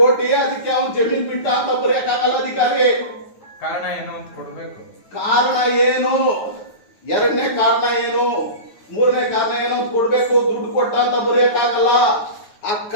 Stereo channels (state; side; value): late; right; 9.4 ms